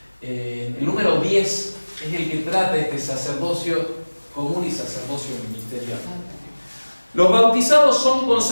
El número 10 es el que trata este sacerdocio común y sacerdocio ministerial. Los bautizados son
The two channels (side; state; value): both; inverted; correlation -1.00